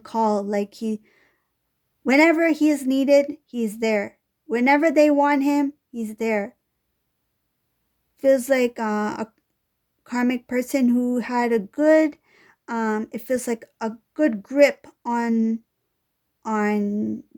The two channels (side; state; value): both; identical; correlation 1.00